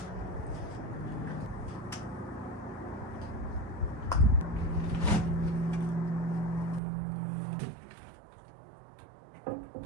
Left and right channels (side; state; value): left; drops out; at 6.8 s